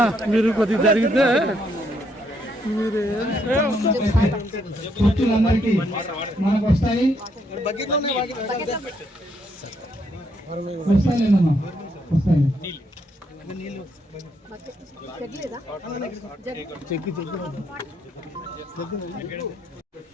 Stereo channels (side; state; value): both; normal; correlation 0.74